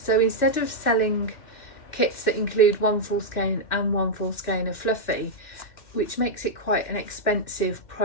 instead of selling kits that include 1 full skein and 1 full skein of fluffy, which makes it quite an expensive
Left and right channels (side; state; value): right; late; 2.2 ms